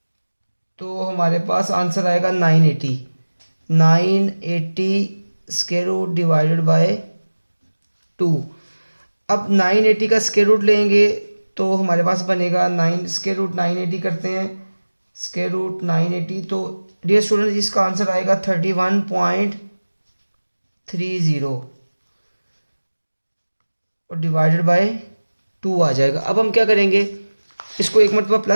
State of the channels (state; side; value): inverted; both; correlation -1.00